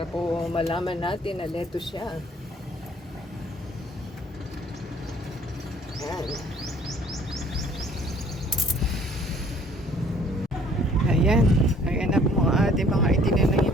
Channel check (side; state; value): both; normal; correlation 0.57